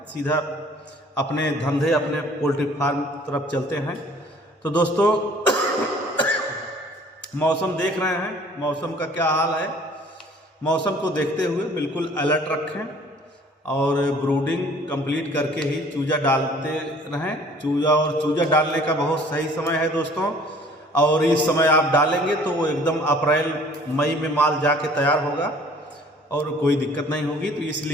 सीधा अपने धंधे, अपने पोल्ट्री फार्म तरफ चलते हैं। तो दोस्तों मौसम देख रहे हैं, मौसम का क्या हाल है। मौसम को देखते हुए बिल्कुल अलर्ट रखें, और ब्रूडिंग कंप्लीट करके ही चूजा डालते रहें। चूजा डालने का बहुत सही समय है दोस्तों, और इस समय आप डालेंगे तो वो एकदम अप्रैल मई में माल जाके तैयार होगा और कोई दिक्कत नहीं होगी। तो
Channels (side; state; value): both; normal; correlation 0.53